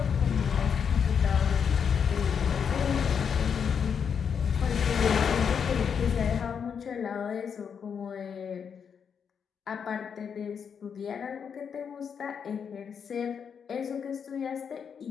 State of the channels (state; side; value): quieter; right; 7.0 dB